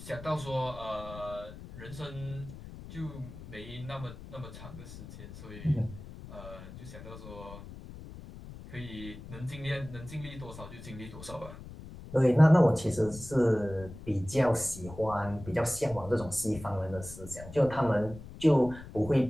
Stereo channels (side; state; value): left; noise; rumble, 14 dB below the sound